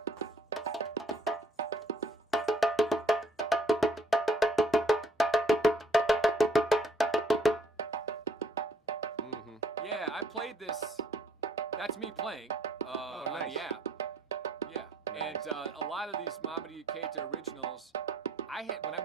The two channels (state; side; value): normal; both; correlation 0.63